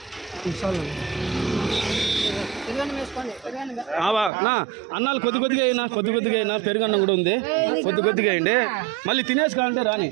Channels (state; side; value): drops out; left; at 4.3 s